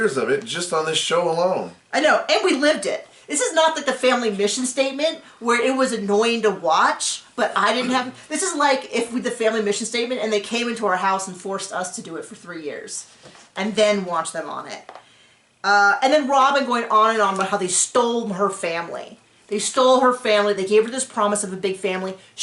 of it just on this show alone. I know, and we lived it. This is not like the family mission statement where it was annoying to watch, but I didn't have... This is like if we the family mission statement and they came into our house and forced us to do it for 3 years and then watch them on it. And then Robyn going on and on about how they stole her family. They stole her family. They gave her this promise of a big family.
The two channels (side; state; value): both; identical; correlation 1.00